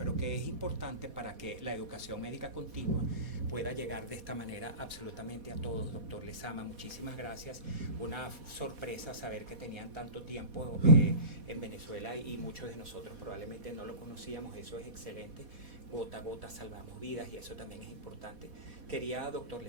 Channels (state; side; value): late; left; 4.1 ms